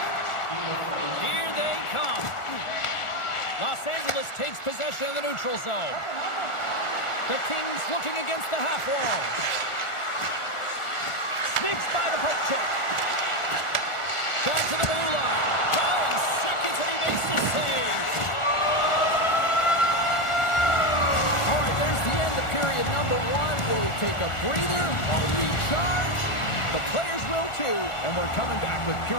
Here they come. Los Angeles takes possession of the neutral zone. The Kings looking against the half wall. Sneaks by the poke check. Back to the blue line. Going seconds and he makes the save. All right, there's the end of period number one. We'll take a breather. We'll recharge. The players will too. And we're coming back with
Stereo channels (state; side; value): late; right; 1.4 ms